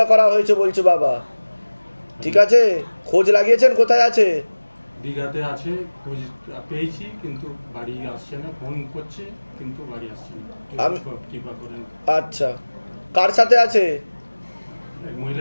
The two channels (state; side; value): inverted; both; correlation -1.00